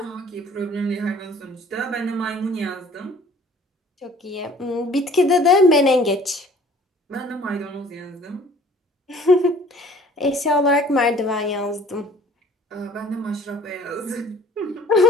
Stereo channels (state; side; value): normal; both; correlation 0.53